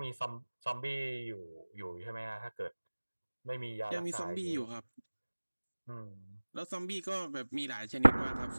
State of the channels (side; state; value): both; inverted; correlation -1.00